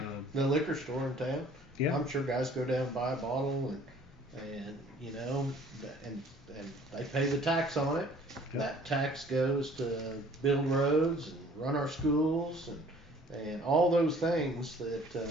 The liquor store in town. Yeah. I'm sure guys go down and buy a bottle and they pay the tax on it. Yeah. That tax goes to build roads and run our schools and all those things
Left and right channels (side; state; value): both; normal; correlation 0.54